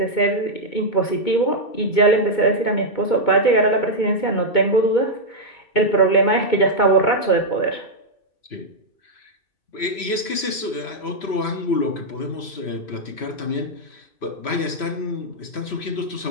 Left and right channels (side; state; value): right; late; 3.0 ms